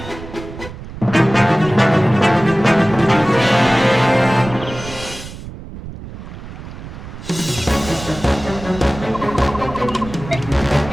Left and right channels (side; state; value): right; noise; rumble, 13 dB below the sound